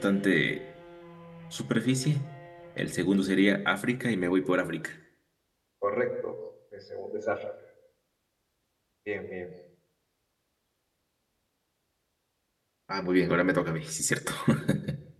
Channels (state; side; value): identical; both; correlation 1.00